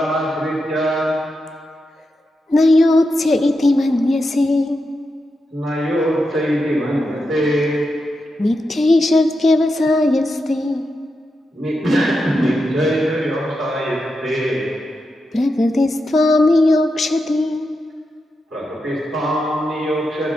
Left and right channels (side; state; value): both; normal; correlation 0.87